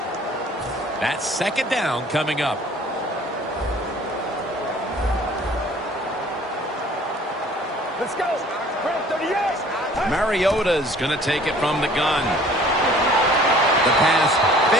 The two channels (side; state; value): both; normal; correlation 0.52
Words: That's second down coming up. Let's go. 38. Mariota's going to take it from the gun. The pass